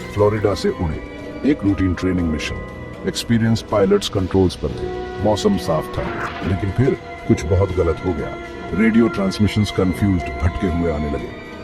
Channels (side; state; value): both; identical; correlation 1.00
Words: Florida से उड़े। एक routine training mission. Experience pilots controls पर थे। मौसम साफ था, लेकिन फिर कुछ बहुत गलत हो गया। रेडियो ट्रांसमिशंस कंफ्यूज्ड, भटके हुए आने